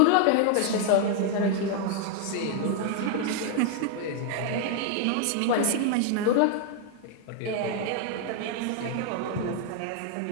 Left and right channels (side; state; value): both; different; correlation 0.00